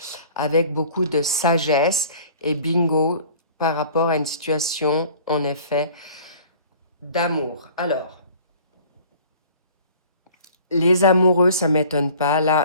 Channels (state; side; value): inverted; both; correlation -0.49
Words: avec beaucoup de sagesse et bingo par rapport à une situation, en effet, d'amour. Alors, les amoureux, ça ne m'étonne pas.